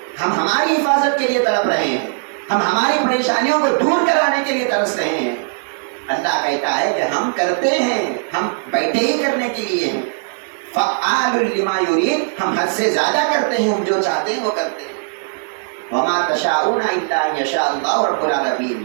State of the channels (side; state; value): left; silent; digital silence